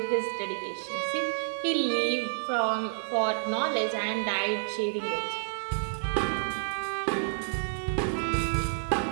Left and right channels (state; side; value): silent; left; 58 dB below the other